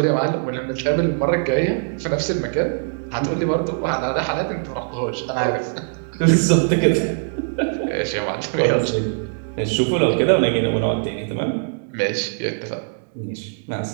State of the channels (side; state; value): left; silent; digital silence